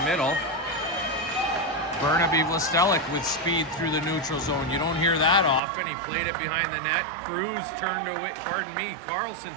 middle. Burnaby Vlastelic with speed through the neutral zone. You don't hear that often. He played it behind the net. Cruz turned away, Carlson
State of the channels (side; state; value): left; drops out; at 5.6 s